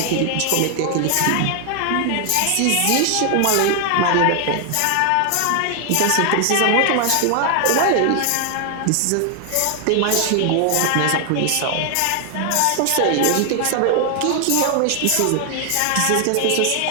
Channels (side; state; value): both; different; correlation 0.00